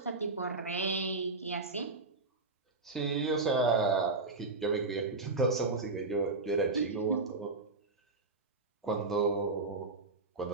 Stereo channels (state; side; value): quieter; left; 3.5 dB